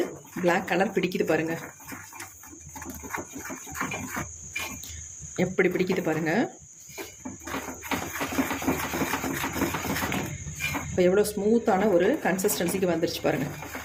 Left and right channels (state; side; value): identical; both; correlation 1.00